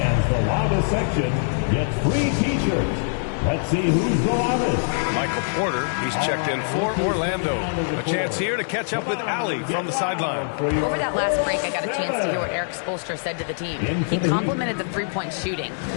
the loudest section gets free T-shirts. Let's see who's the loudest. Michael Porter, he's checked in for Orlando. A chance here to catch up with Allie from the sideline. Over that last break, I got a chance to hear what Eric Spoelstra said to the team. He complimented the three-point shooting.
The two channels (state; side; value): silent; right; digital silence